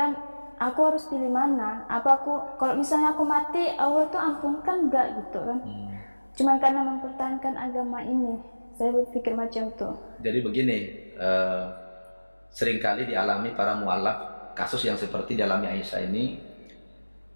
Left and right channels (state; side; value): inverted; both; correlation -1.00